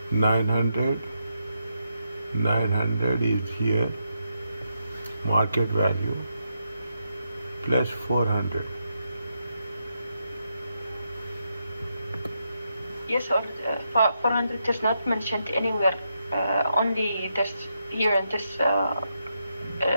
900 is here, market value, plus 400. Yes, or 400 is not mentioned anywhere. Only this here in this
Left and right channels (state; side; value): inverted; both; correlation -0.83